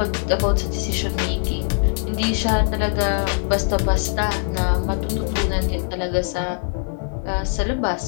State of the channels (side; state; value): right; silent; digital silence